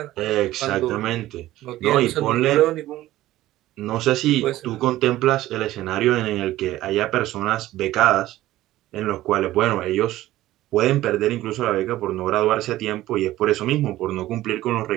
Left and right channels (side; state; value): left; quieter; 15.4 dB